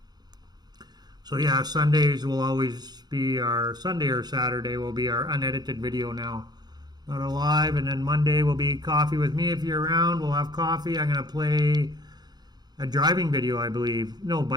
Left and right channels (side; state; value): left; late; 0.20 ms